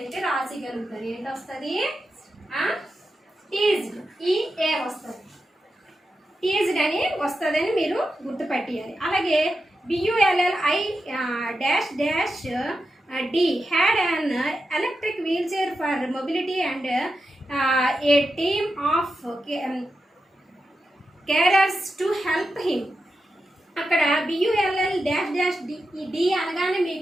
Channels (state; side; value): normal; both; correlation 0.89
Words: రాసిగలుగుతారు. ఏంటి వస్తుంది? టీజ్డ్, EA వస్తుంది, టీజ్డ్ అని వస్తుందని మీరు గుర్తుపెట్టాలి. అలాగే BULLI-D had an electric wheelchair for mobility and a team of carers to help him. అక్కడ BULL-D అనగానే